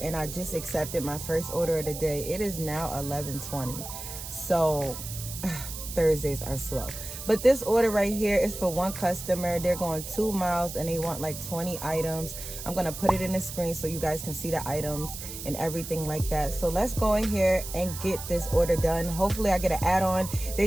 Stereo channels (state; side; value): noise; right; hiss, 9 dB below the sound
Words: and I just accepted my first order of the day. It is now 11:20. So Thursdays are slow. But this order right here is for one customer. They're going 2 miles and they want like 20 items. I'm gonna put it in the screen so you guys can see the items and everything like that. So let's go in here and get this order done. Hopefully I get an add-on.